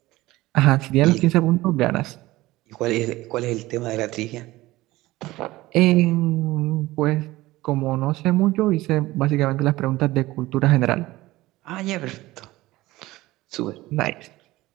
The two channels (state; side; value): quieter; left; 18.3 dB